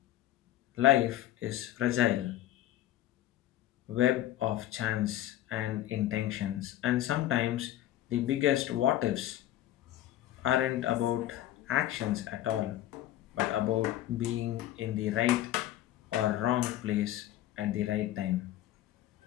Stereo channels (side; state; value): right; quieter; 13.5 dB